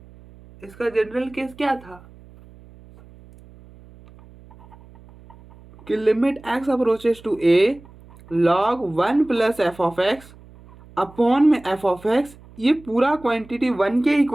इसका जनरल केस क्या था कि limit x approaches to a log 1 plus f of x upon में एफ ऑफ एक्स, ये पूरा क्वांटिटी 1 के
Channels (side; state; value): right; noise; hum, 23 dB below the sound